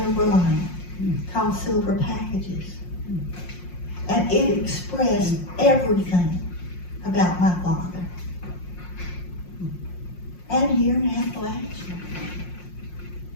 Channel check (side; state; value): right; late; 5.6 ms